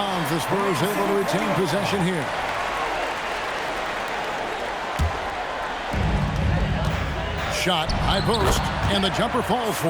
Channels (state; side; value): identical; both; correlation 1.00